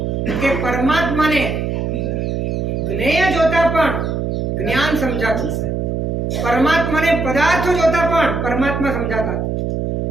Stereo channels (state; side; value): noise; right; hum, 1 dB below the sound